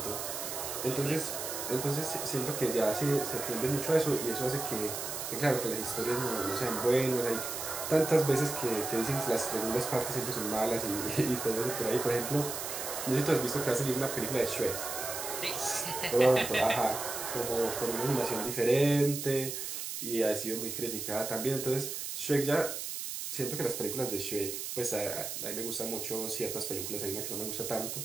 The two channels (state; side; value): noise; right; hiss, 5 dB below the sound